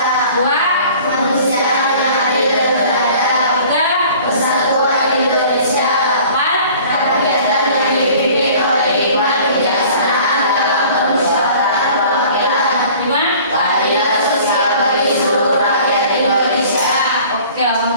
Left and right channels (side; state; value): both; inverted; correlation -0.48